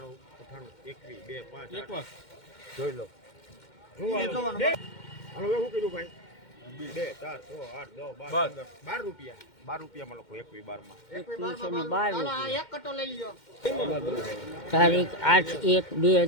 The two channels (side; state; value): right; late; 2.1 ms